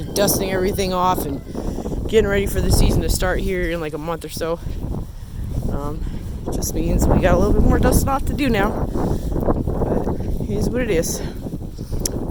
dusting everything off and getting ready for the season to start here in like a month or so. Just means we got a little bit more dusting off to do now. But it is what it is.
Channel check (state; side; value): identical; both; correlation 1.00